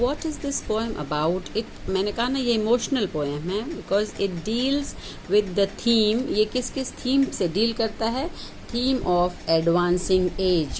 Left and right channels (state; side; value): identical; both; correlation 1.00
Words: is this poem about. It मैंने कहा ना, ये इमोशनल पोएम है because it deals with the theme. ये किस किस थीम से डील करता है? थीम ऑफ एडवांसिंग